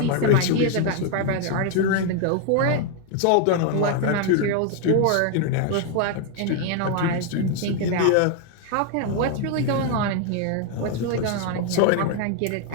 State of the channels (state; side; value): different; both; correlation 0.01